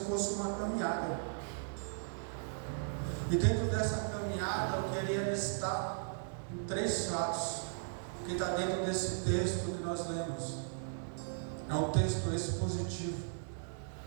fosse uma caminhada. E dentro dessa caminhada eu queria listar 3 fatos que está dentro desse texto que nós lemos. É um texto expositivo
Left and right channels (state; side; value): silent; left; digital silence